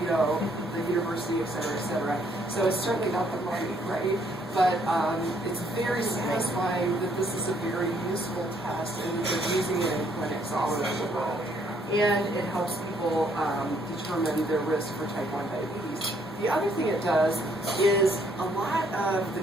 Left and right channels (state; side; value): normal; both; correlation 0.67